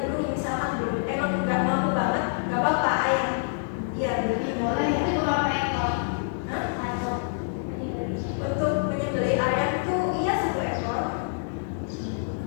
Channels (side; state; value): right; silent; digital silence